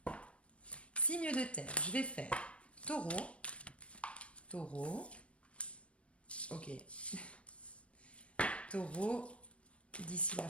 signe de terre, je vais faire taureau, taureau, ok, taureau, d'ici la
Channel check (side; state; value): right; late; 0.061 ms